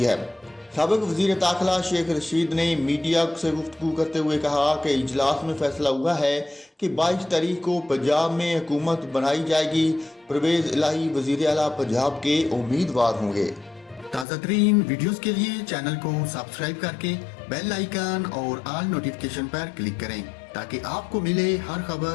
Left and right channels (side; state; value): right; drops out; at 14.2 s